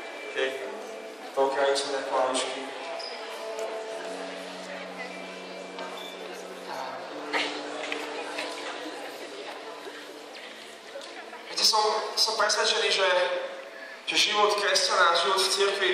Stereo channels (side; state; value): both; identical; correlation 1.00